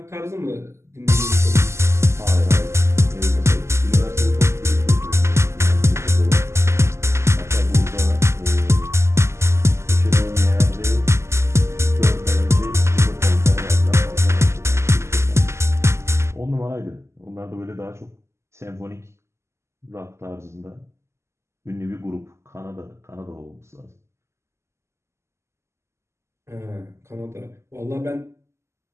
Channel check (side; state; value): left; late; 0.13 ms